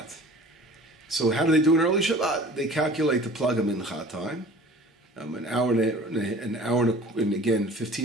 So how do they do an early Shabbat? They calculate the Plag HaMincha time, an hour and again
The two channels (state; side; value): normal; both; correlation 0.45